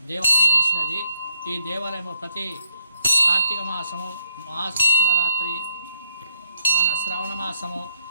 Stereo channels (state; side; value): inverted; both; correlation -0.71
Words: దేవాలయం వెలిసినది. ఈ దేవాలయము ప్రతి కార్తీక మాసము, మహాశివరాత్రి, మన శ్రవణ మాసము,